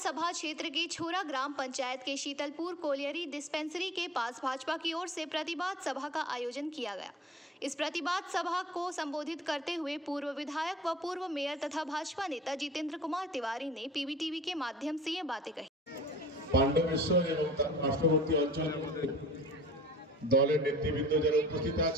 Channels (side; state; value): both; normal; correlation 0.47